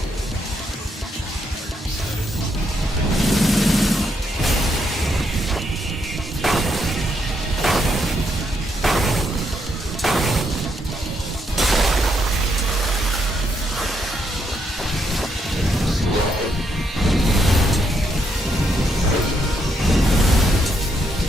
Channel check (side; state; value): both; normal; correlation 0.77